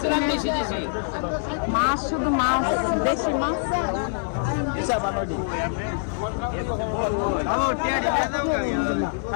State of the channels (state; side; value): silent; right; 62 dB below the other